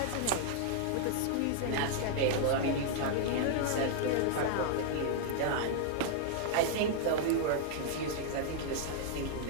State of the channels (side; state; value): both; different; correlation -0.01